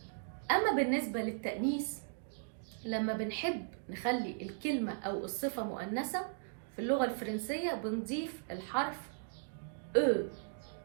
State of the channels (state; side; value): silent; left; digital silence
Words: اما بالنسبة للتأنيث، لما بنحب نخلي الكلمة أو الصفة مؤنثة في اللغة الفرنسية بنضيف الحرف او